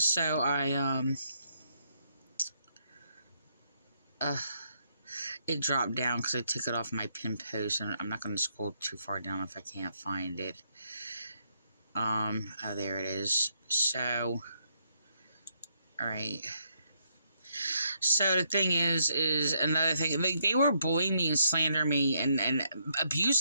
it dropped down because I took it off my pin post, and I'm not going to scroll too far down if I can't find it. Oh, there it is. So, all right. So the thing is another thing. They were bullying me and slandering me and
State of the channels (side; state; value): both; inverted; correlation -0.75